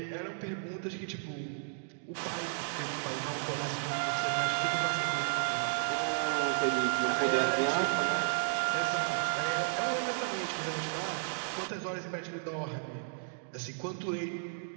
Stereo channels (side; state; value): left; silent; digital silence